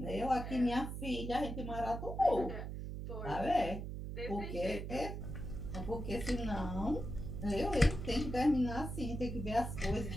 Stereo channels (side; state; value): right; noise; hum, 6 dB below the sound